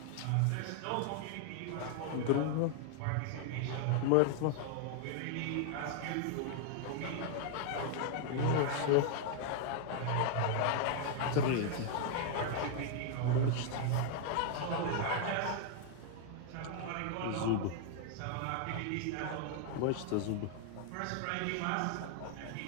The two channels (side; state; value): both; different; correlation 0.00